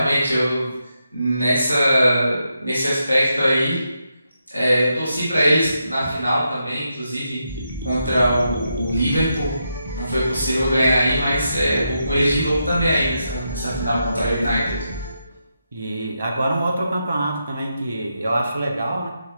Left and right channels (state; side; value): inverted; both; correlation -0.84